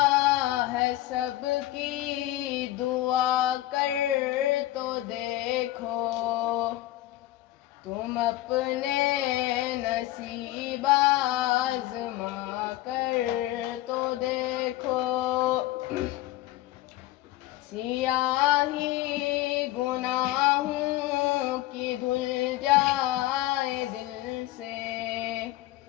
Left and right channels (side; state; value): right; quieter; 15.8 dB